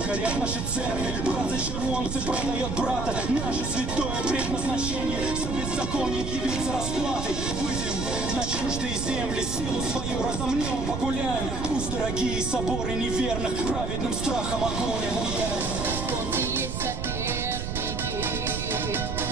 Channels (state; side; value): noise; right; rumble, 4 dB below the sound